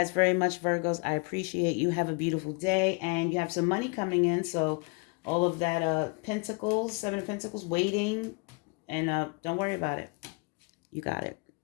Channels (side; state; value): right; quieter; 31.6 dB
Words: very much, Virgos. I appreciate you. Have a beautiful day, and you have some money coming in, so all of that pentacles, 7 of Pentacles, waiting, and don't worry about it. You got it.